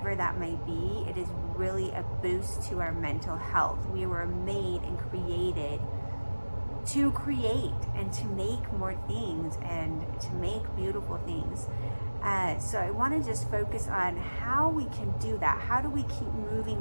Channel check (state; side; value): inverted; both; correlation -1.00